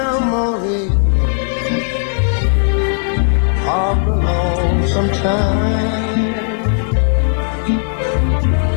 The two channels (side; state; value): right; silent; digital silence